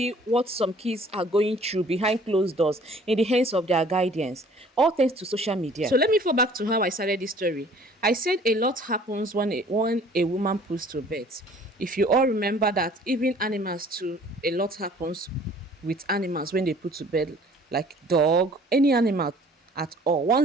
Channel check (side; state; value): both; normal; correlation 0.53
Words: what some kids are going through behind closed doors in the hands of their guardians, all thanks to social media. So let me fall back to how I started this story. I said a lot happens when a woman puts to bed. If you all remember that, even animals too, a lot happens with animals when they put to bed, like dog, any animal at all.